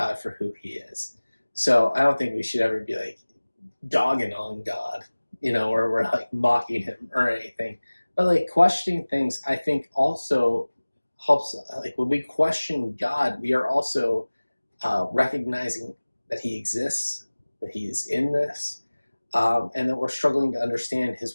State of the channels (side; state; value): both; inverted; correlation -1.00